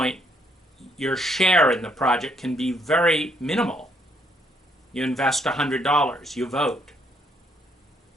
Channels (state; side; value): normal; both; correlation 0.70